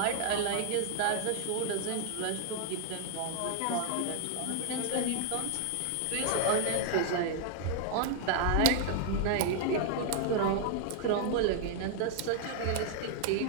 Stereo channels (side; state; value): both; different; correlation 0.00